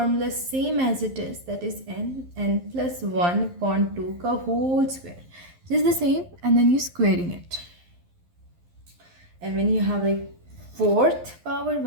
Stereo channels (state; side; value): late; left; 11 ms